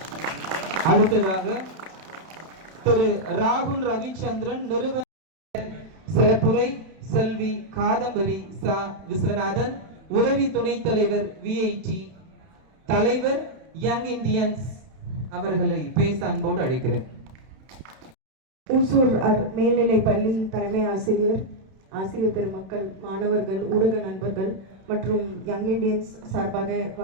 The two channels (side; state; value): left; late; 31 ms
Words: அடுத்ததாக திரு ராகுல் ரவிச்சந்திரன் நிறுவன சிறப்புரை செல்வி காதம்பரி சா விஸ்வநாதன், உதவி துணைத் தலைவர் விஐடி தலைவர் யங் இந்தியன்ஸ் அவர்களை பேச அன்போடு அழைக்கிறேன். ஊசூர் மேல்நிலை பள்ளி தலைமை ஆசிரியர், ஆசிரியர் பெருமக்கள், மாணவர்கள், ஊடக நண்பர்கள் மற்றும் யங் இண்டியன்ஸ் சார்பாக